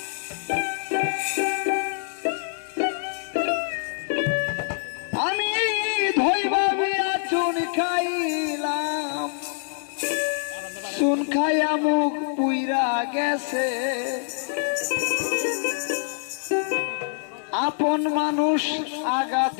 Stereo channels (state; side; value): silent; right; digital silence